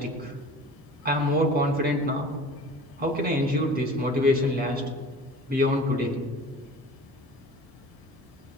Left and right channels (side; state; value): both; normal; correlation 0.42